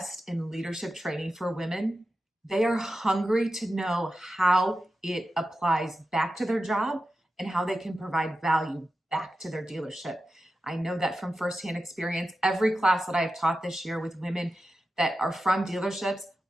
in leadership training for women, they are hungry to know how it applies back to their job and how they can provide value back to their dealership. I know that from firsthand experience. Every class that I've taught this year with women that are from dealerships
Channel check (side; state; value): both; normal; correlation 0.92